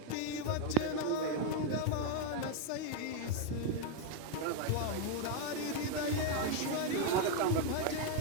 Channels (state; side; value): different; both; correlation 0.01